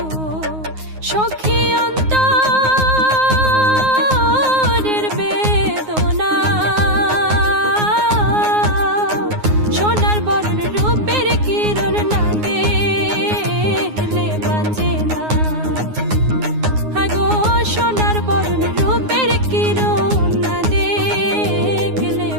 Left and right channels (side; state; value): left; late; 9.5 ms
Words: সখী অন্তরের বেদনা, সোনার বরণ রূপের কিরণ না দেখলে বাঁচে না। আগো সোনার বরণ রূপের কিরণ না দেখলে